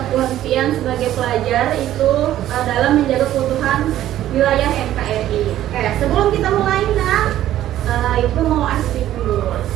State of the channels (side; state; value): left; quieter; 12.9 dB